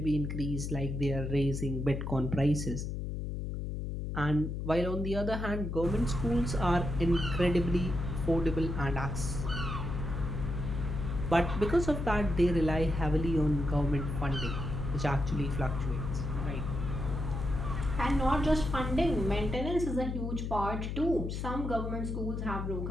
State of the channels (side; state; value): left; noise; hum, 3 dB below the sound